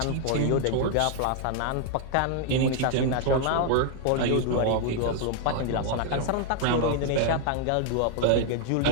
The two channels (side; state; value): both; different; correlation 0.00